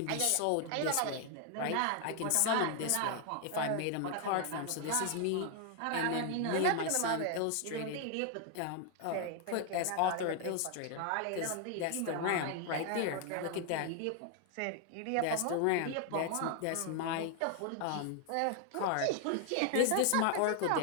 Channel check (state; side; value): different; both; correlation 0.00